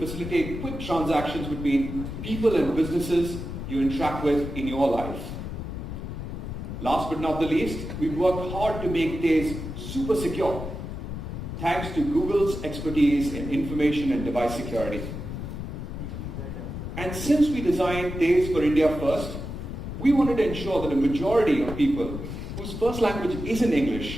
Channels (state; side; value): noise; left; rumble, 7 dB below the sound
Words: quick transactions between people and businesses you interact with in your life. Last but not the least, we've worked hard to make Tez super secure, thanks to Google's expertise in information and device security. And since we designed Tez for India first, we wanted to ensure that a majority of people whose first language isn't